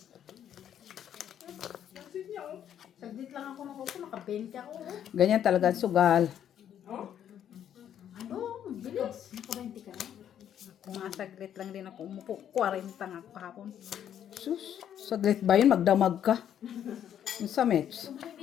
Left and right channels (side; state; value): right; quieter; 9.8 dB